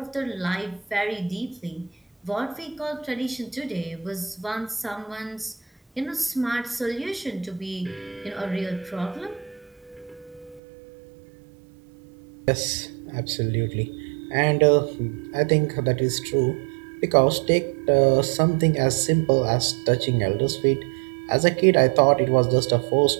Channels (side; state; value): left; drops out; at 10.6 s